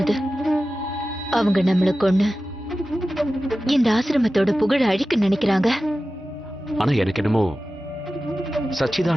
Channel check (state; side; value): normal; both; correlation 0.94